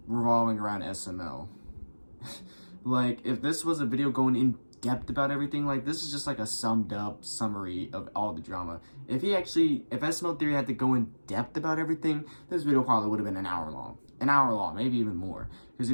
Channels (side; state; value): both; inverted; correlation -1.00